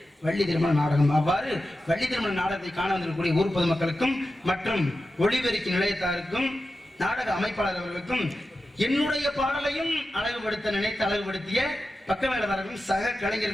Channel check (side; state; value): both; normal; correlation 0.92